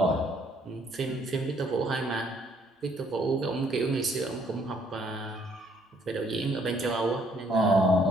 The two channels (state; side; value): normal; both; correlation 0.66